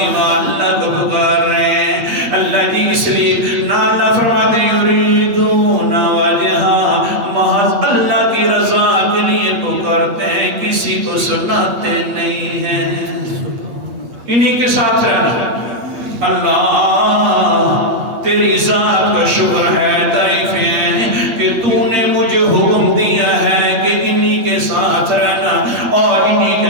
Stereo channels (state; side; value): late; left; 8.4 ms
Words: کو پکار رہے ہیں۔ اللہ جی اس لیے نہ اللہ فرماتے یریدون وجہا، محض اللہ کی رضا کے لیے پکارتے ہیں، کسی کو سناتے نہیں ہیں۔ انہی کے ساتھ رہنا۔ اللہ تیری ذات کا شکر ہے، تعریفیں ہیں کہ تو نے مجھے حکم دیا ہے کہ انہی کے ساتھ رہنا اور انہی